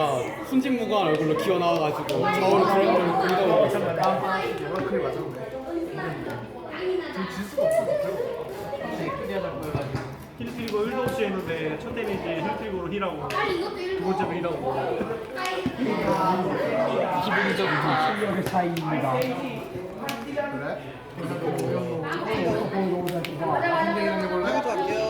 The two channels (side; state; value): both; identical; correlation 1.00